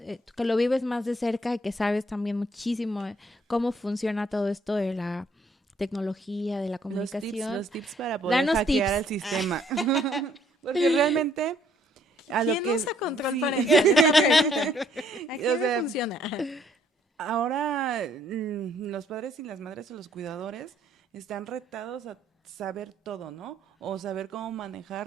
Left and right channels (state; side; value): normal; both; correlation 0.66